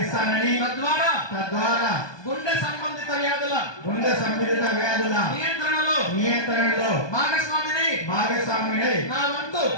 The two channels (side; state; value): right; late; 1.2 ms